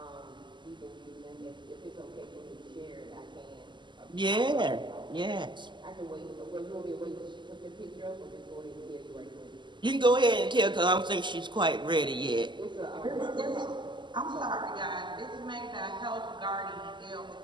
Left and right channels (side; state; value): left; late; 0.22 ms